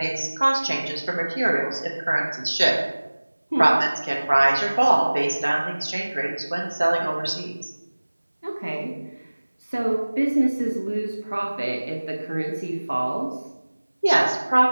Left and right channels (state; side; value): inverted; both; correlation -1.00